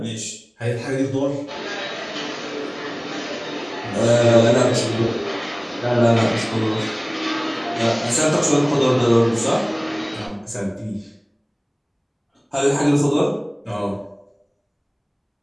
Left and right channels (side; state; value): both; identical; correlation 1.00